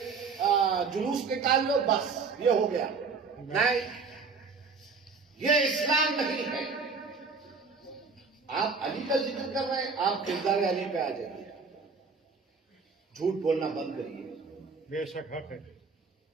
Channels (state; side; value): quieter; left; 4.8 dB